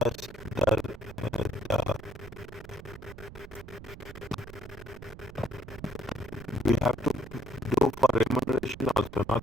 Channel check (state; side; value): noise; right; rumble, 14 dB below the sound